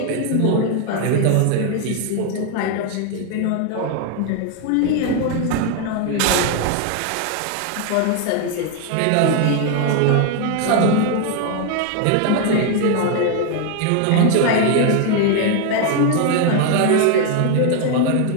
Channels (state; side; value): different; both; correlation 0.01